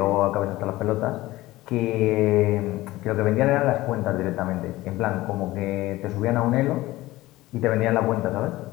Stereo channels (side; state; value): right; quieter; 17.9 dB